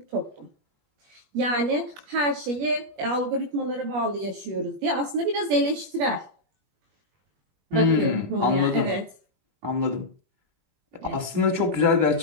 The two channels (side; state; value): left; late; 21 ms